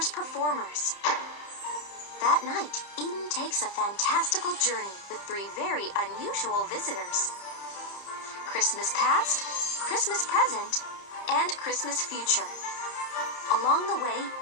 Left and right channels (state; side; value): late; right; 30 ms